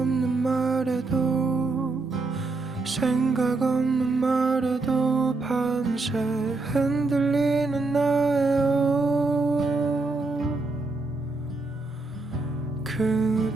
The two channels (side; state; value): left; quieter; 3.5 dB